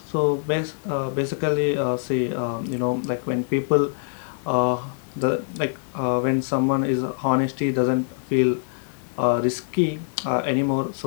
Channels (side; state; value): right; silent; digital silence